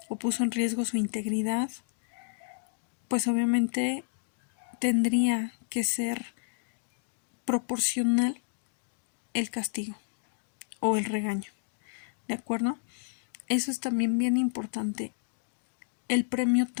o puso en riesgo su integridad, pues obviamente tendría que ser proporcional el castigo o el regaño. ¿De acuerdo? Eso es también bien importante. El premio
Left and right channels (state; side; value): silent; right; digital silence